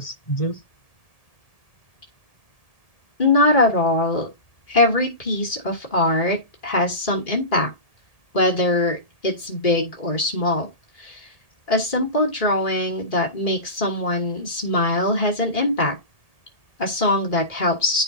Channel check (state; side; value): late; right; 1.8 ms